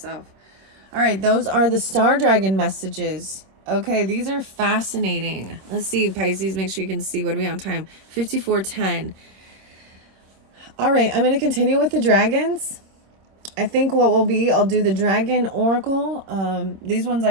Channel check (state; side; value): late; left; 26 ms